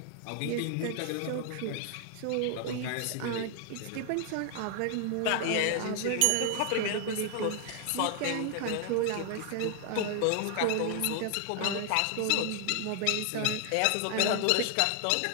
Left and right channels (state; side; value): different; both; correlation 0.00